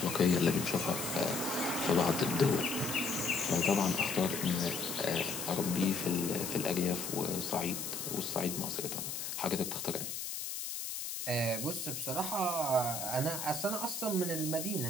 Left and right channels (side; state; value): left; noise; hiss, 5 dB below the sound